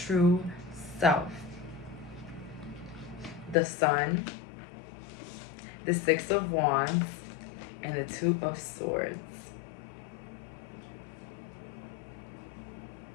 self. The Sun, the Six of Wands, and the Two of Swords.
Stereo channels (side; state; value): right; drops out; at 3.6 s